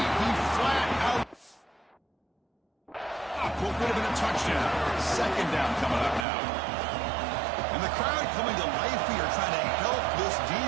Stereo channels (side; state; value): left; drops out; at 6.2 s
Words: He flat out. What would have been a touchdown. 2nd down coming up now. And the crowd coming to life here, trying to help this